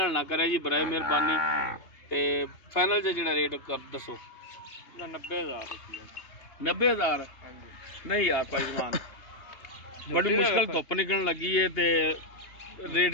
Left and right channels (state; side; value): late; right; 3.3 ms